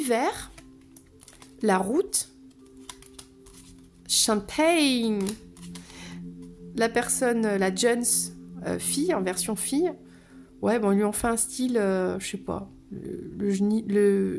la route, champagne, la personne, la Jones fille, en version fille, ouais, bon, ils lui ont fait un style, je sais pas, le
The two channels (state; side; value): identical; both; correlation 1.00